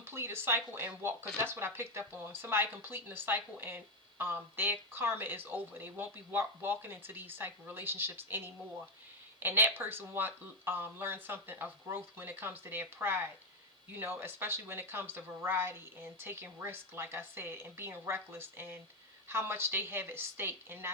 a cycle and walk, because that's what I picked up on. Somebody completing a cycle and their karma is over. They won't be walking into these type of relationships anymore. And that person learn something of growth when it comes to their pride. You know, especially when it comes to variety and taking risk, like I said, and being reckless, and how much they have at stake, and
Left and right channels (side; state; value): both; normal; correlation 0.05